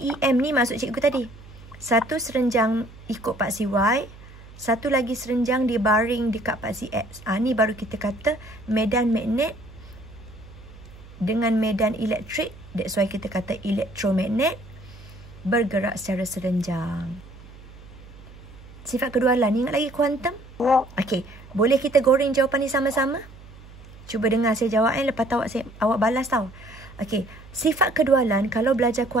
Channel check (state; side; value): noise; right; hum, 19 dB below the sound